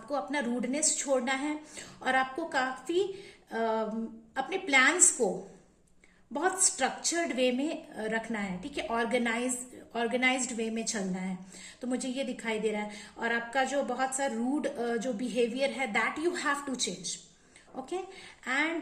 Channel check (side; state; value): both; identical; correlation 1.00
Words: अपना रूडनेस छोड़ना है और आपको काफी अपने प्लान्स को बहुत स्ट्रक्चर्ड वे में रखना है। ठीक है, ऑर्गेनाइज्ड वे में चलना है। तो मुझे ये दिखाई दे रहा है, और आपका जो बहुत सा रूड जो बिहेवियर है, that you have to change. Okay,